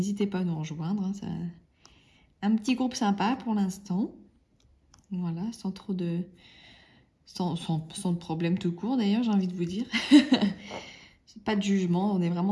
pas à nous rejoindre. Hein, ça... Un petit groupe sympa pour l'instant. Voilà, sans trop de... Sans de problème tout court, d'ailleurs, j'ai envie de vous dire. Pas de jugement, on est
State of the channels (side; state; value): both; identical; correlation 1.00